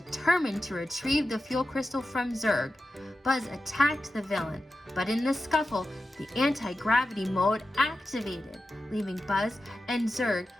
to retrieve the fuel crystal from Zurg. Buzz attacked the villain, but in the scuffle, the anti-gravity mode activated, leaving Buzz and Zurg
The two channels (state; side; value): normal; both; correlation 0.92